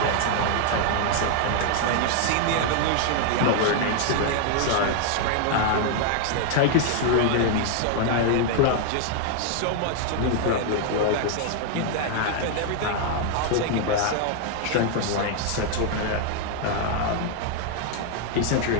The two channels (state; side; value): different; both; correlation 0.00